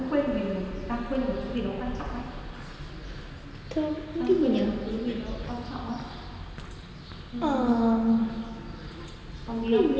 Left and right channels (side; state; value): both; identical; correlation 1.00